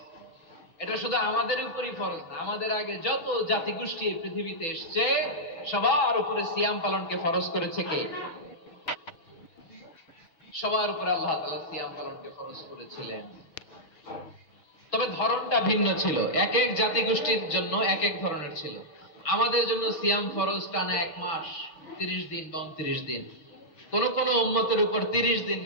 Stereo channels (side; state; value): right; late; 6.1 ms